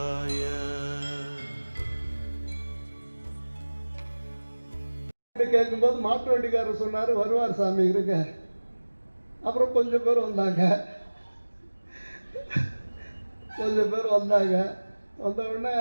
கேட்கும்போது மாட்டு வண்டிக்காரர் சொன்னார், வருவார் சாமி இருங்க. அப்புறம் கொஞ்சம் பேர் வந்தாங்க. வந்த உடனே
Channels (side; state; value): both; inverted; correlation -1.00